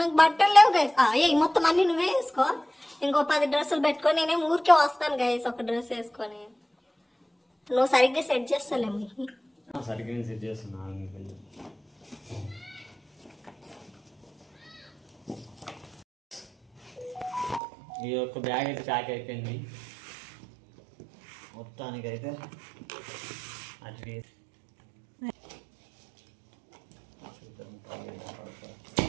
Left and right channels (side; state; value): left; drops out; at 17.6 s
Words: నాకు బట్టలు లేవు గైస్. మొత్తం అన్ని నువ్వే వేసుకో. ఇంకో 10 డ్రెస్సులు పెట్టుకొని నేనేం ఊరికే వస్తాను గైస్ ఒక డ్రెస్ వేసుకొని. నువ్వు సరిగ్గా సెట్ చేస్తాలేము. సరిగ్గా సెట్ చేస్తున్నా. ఈ యొక్క బ్యాగ్ అయితే ప్యాక్ అయిపోయింది మొత్తానికైతే. అట్లీస్ట్